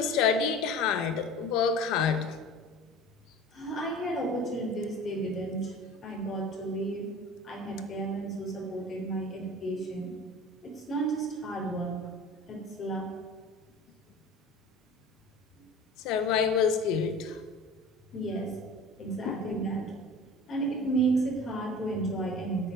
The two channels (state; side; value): normal; both; correlation 0.39